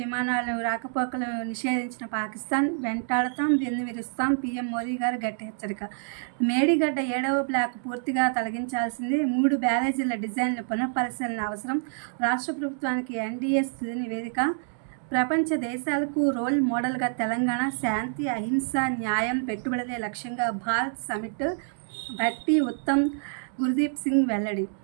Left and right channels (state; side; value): silent; left; digital silence